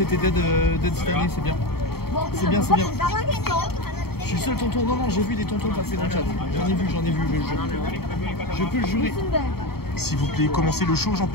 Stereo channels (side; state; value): right; late; 0.95 ms